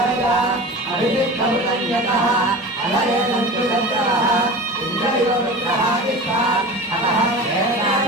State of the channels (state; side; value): normal; both; correlation 0.34